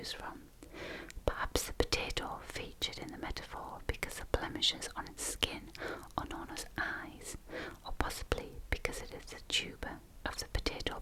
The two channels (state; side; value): identical; both; correlation 1.00